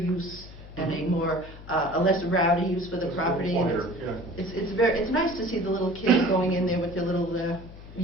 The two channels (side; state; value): left; noise; hum, 16 dB below the sound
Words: and a more, a less rowdy use for the property. And it's nice to see the little kids going in there with their little